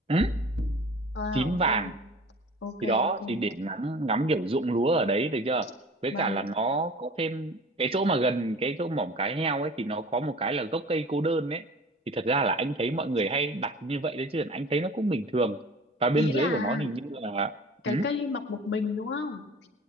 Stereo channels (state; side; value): normal; both; correlation 0.42